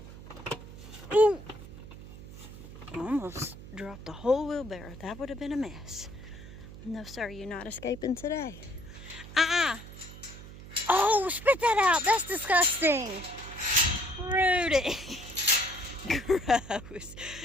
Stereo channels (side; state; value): right; noise; hum, 15 dB below the sound